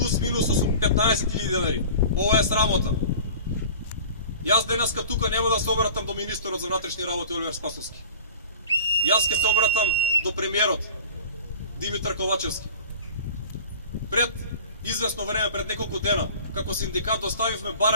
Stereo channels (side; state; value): both; inverted; correlation -0.40